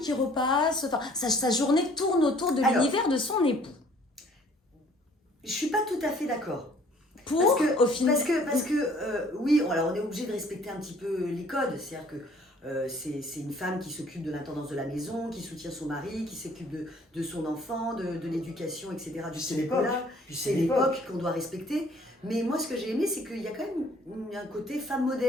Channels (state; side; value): normal; both; correlation 0.57